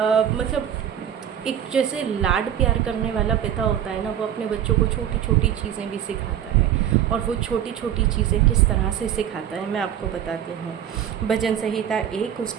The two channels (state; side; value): quieter; left; 10.1 dB